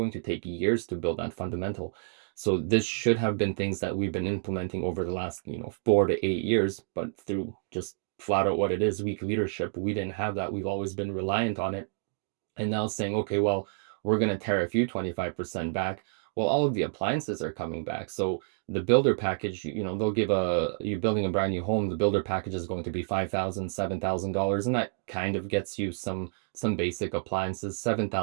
to take years to build that fundamental. So this should have been things that we've been implementing over the last, 4 to 8 years, but through just flat out what it is, weak leadership, we didn't have that. We've always been reliant on it, and now saying, okay, well, we're going to tariff you 25% back. Well, all of the appliances are coming back. So the builder package, they'll give you building a brand new home, the builder package is going to be $5,000, $7,000. And that kind of gets you some basic appliances.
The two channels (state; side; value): silent; left; digital silence